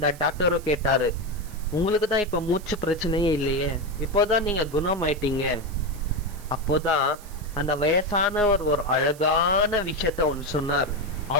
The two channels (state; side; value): noise; right; hiss, 21 dB below the sound